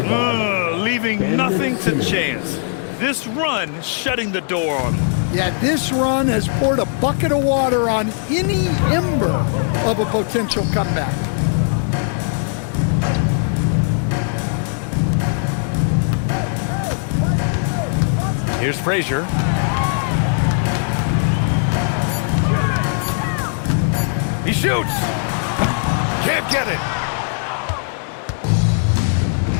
Leaving nothing to chance. This run shutting the door on him. Yeah, this run has poured a bucket of water on any ember of a potential comeback. Here's Frazier. He shoots. Can't get it.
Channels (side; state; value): right; silent; 66 dB below the other